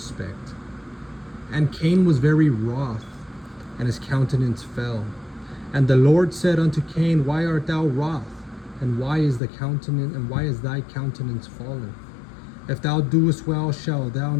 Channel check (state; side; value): drops out; right; at 9.4 s